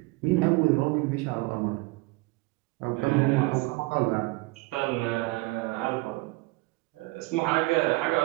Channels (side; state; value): left; quieter; 23.1 dB